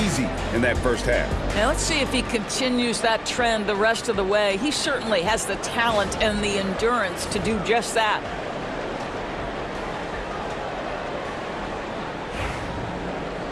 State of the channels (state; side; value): identical; both; correlation 1.00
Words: in that first half. Now let's see if he continues that trend the rest of the way. He certainly has the talent and the endurance to do just that.